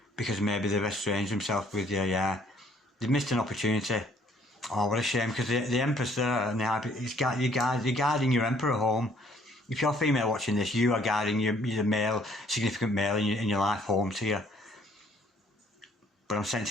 because maybe they've estranged themselves with you. Yeah, they've missed an opportunity. Oh, what a shame, because the Empress there, and you're guiding your Emperor home. If you're female watching this, you are guiding your male, significant male in your life home to you. But I'm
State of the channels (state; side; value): normal; both; correlation 0.62